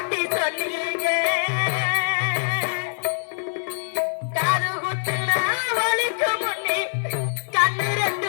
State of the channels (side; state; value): right; silent; digital silence